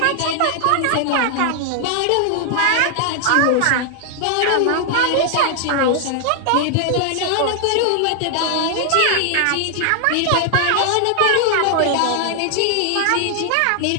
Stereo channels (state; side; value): different; both; correlation 0.00